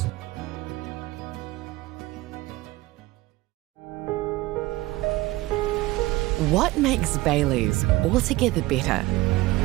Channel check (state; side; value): quieter; left; 19.2 dB